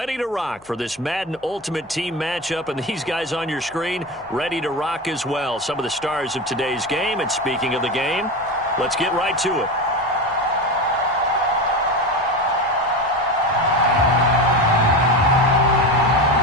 to rock for this Madden Ultimate Team matchup, and these guys on your screen ready to rock as well. Some of the stars of today's game, and speaking of the game, let's get right to it.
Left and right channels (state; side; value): noise; left; hum, 29 dB below the sound